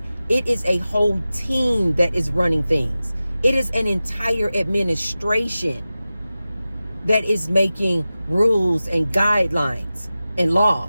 it is a whole team that is running things, it is an entire administration that is making rules and guidelines and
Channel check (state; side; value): inverted; both; correlation -0.95